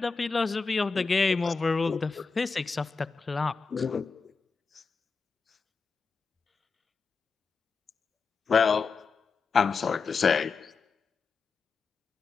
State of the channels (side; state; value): right; quieter; 4.8 dB